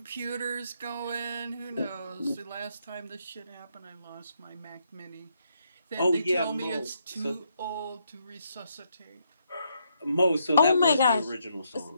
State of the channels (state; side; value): inverted; both; correlation -0.76